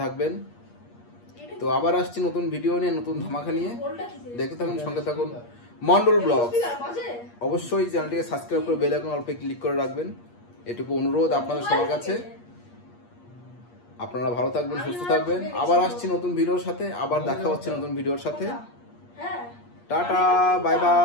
থাকবেন। তো আবার আসছি নতুন ভিডিও নিয়ে, নতুন ধামাকা নিয়ে। দেখতে থাকুন, সঙ্গে থাকুন মন্ডল ব্লগ। অবশ্যই চ্যানেলটিকে সাবস্ক্রাইব করে বেল আইকন অল্পে ক্লিক করে রাখবেন, এটুকু অনুরোধ আপনাদের সবার কাছে। আপনারা ভালো থাকবেন, সুস্থ থাকবেন। আবার আসছি নতুন ভিডিওর সাথে, আবার দেখা হচ্ছে নতুন ভিডিওর সাথে। টাটা, বাই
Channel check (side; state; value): right; late; 8.5 ms